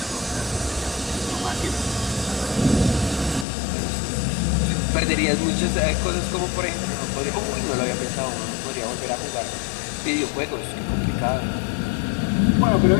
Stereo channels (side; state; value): right; drops out; at 3.5 s